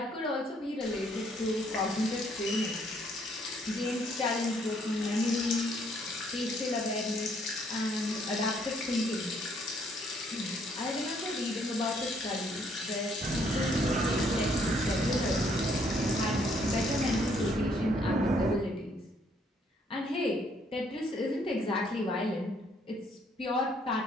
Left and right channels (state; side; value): normal; both; correlation 0.67